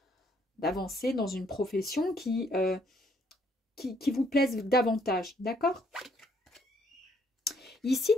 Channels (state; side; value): normal; both; correlation 0.67